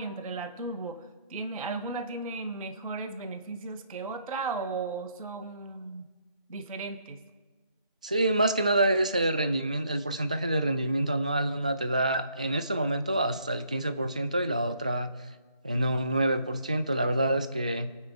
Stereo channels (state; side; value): inverted; both; correlation -0.70